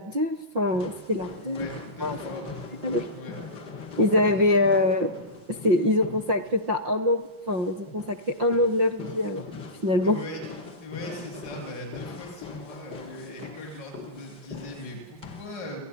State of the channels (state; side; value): late; left; 5.7 ms